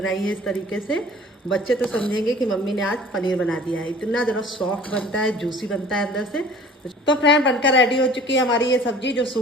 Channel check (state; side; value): normal; both; correlation 0.47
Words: है इस तरीके से। बच्चे तो समझेंगे कि मम्मी ने आज पनीर बना दिया है। इतना ज़रा सॉफ्ट बनता है, जूसी बनता है अंदर से। तो फ्रेंड बनकर रेडी हो चुकी है हमारी ये सब्जी जो